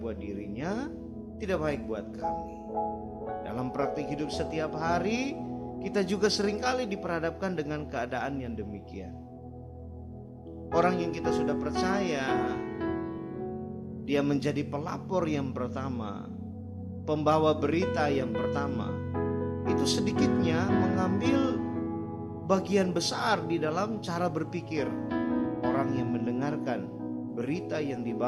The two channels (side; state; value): both; identical; correlation 1.00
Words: buat dirinya, tidak baik buat kami. Dalam praktik hidup setiap hari, kita juga seringkali diperhadapkan dengan keadaan yang demikian. Orang yang kita sudah percaya, dia menjadi pelapor yang pertama, pembawa berita yang pertama, itu sedikitnya mengambil bagian besar di dalam cara berpikir orang yang mendengarkan berita yang